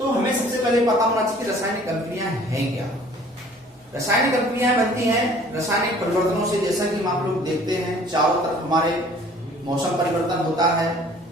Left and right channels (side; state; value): both; normal; correlation 0.52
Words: हमें सबसे पहले पता होना चाहिए कि रासायनिक अभिक्रिया है क्या। रासायनिक अभिक्रियाएं बनती हैं रासायनिक परिवर्तनों से। जैसा कि हम आप लोग देखते हैं चारों तरफ हमारे मौसम परिवर्तन होता है,